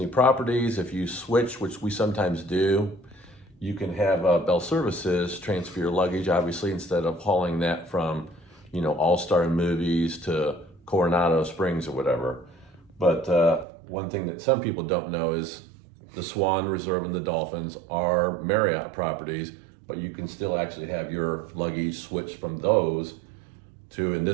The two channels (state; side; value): drops out; left; at 13.7 s